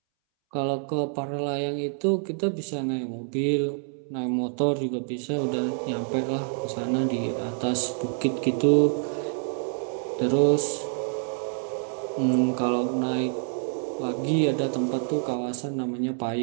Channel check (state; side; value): silent; left; 60 dB below the other